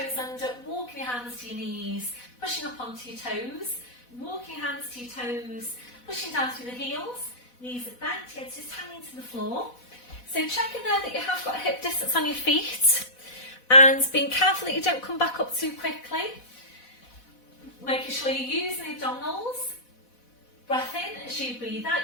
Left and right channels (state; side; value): late; right; 4.1 ms